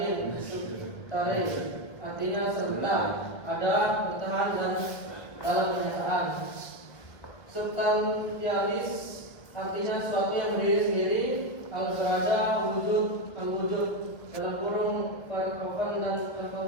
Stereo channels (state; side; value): late; right; 1.8 ms